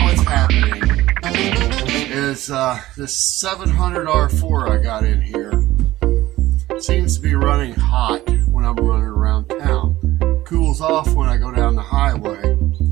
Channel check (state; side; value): quieter; left; 16.2 dB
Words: what's happening is this 700R4 I got in here seems to be running hot when I'm running around town. Cools off when I go down the highway.